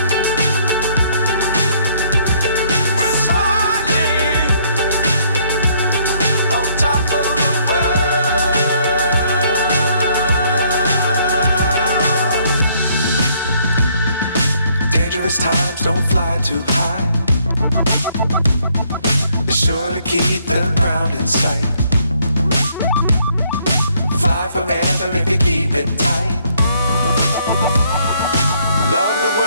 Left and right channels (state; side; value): inverted; both; correlation -0.67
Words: Times don't fly too high. Be sure to keep the ground in sight. Fly forever if you keep it tight. Love the